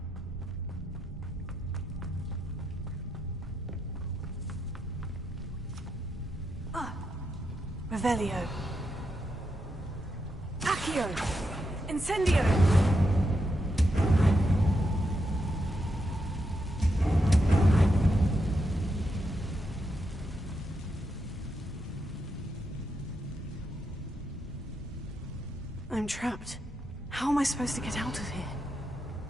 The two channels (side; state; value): both; normal; correlation 0.83